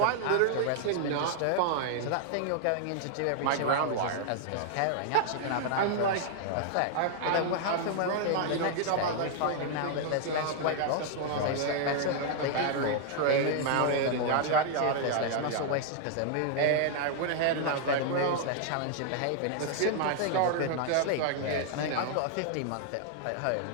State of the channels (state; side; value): different; both; correlation -0.01